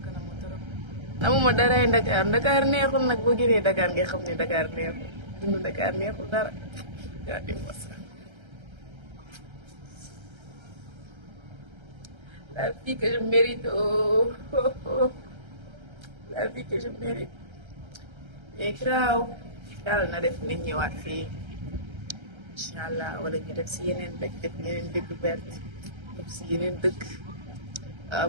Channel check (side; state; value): left; late; 1.3 ms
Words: ko namm trop. namuma daraay Dakar Dakar neexul nag boo génnee Dakar nga xam ne Dakar neexul dund Dakar neexul dara. Regardez-moi ça. La vie que je mérite, oh, oh, oh. La vie que je mérite. Mais graaw yàlla na def nit ñëwaat fii incha allah wala ñu def si yeneen dëkk def yeneen découverte def si yeneen dëkk